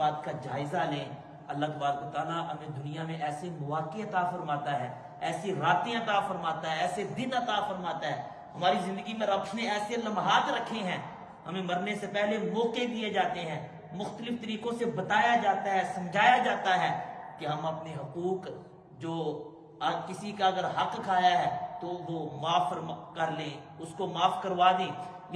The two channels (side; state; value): both; identical; correlation 1.00